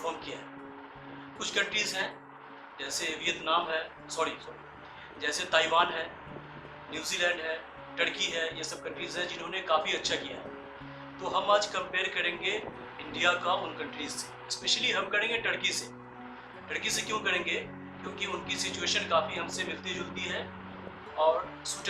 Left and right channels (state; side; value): identical; both; correlation 1.00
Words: किया है। कुछ कंट्रीज़ हैं जैसे वियतनाम है, जैसे ताइवान है, न्यूजीलैंड है, टर्की है, ये सब कंट्रीज़ हैं जिन्होंने काफ़ी अच्छा किया है। तो हम आज कंपेयर करेंगे इंडिया का उन कंट्रीज़ से। स्पेशली हम करेंगे टर्की से। टर्की से क्यों करेंगे? क्योंकि उनकी सिचुएशन काफ़ी हमसे मिलती-जुलती है और